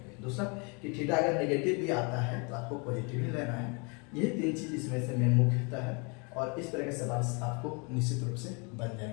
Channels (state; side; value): quieter; right; 32.8 dB